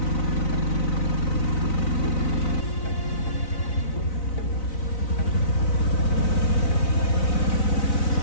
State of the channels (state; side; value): late; right; 4.0 ms